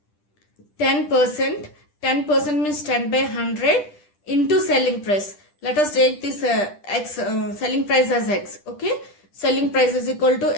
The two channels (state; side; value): late; right; 10 ms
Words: 10%. 10% means 10 by 100 into selling price. Let us take this selling price as x. Okay, selling price is equal